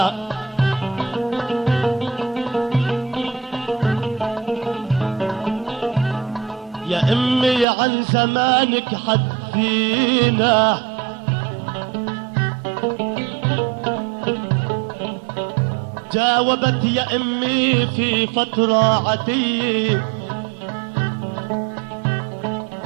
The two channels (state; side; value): drops out; left; at 7.7 s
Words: يا امي عن زمانك حدثينا، جاوبت يا امي في فترة عتية،